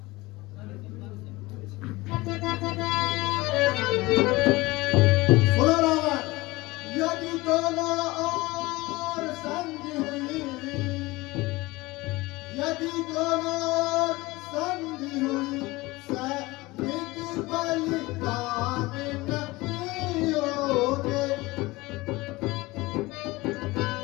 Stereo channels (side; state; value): right; quieter; 21.2 dB